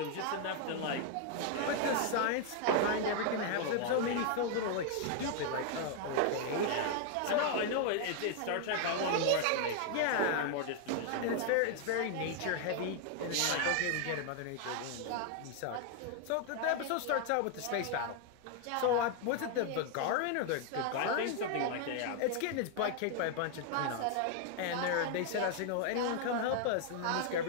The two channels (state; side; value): different; both; correlation 0.00